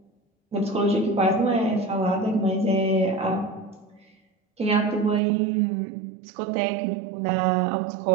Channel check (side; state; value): left; drops out; at 5.2 s